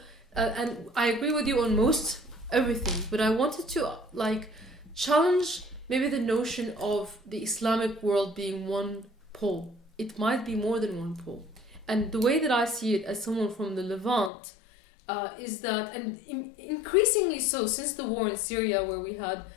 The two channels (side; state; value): right; drops out; at 14.3 s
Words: and I agree with you on most everything, but I wanted to challenge maybe the notion of the Islamic world being one pole. It might be more than one pole. And the way that I see it as someone from the Levant is that, and increasingly so since the war in Syria, where we had